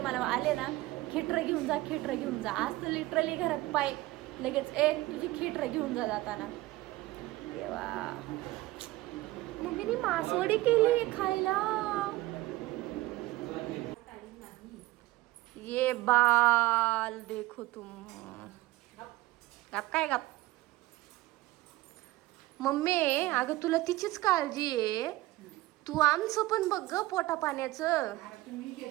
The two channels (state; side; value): quieter; left; 18.4 dB